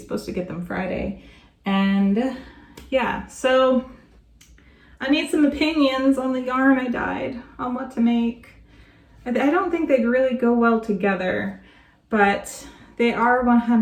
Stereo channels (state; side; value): identical; both; correlation 1.00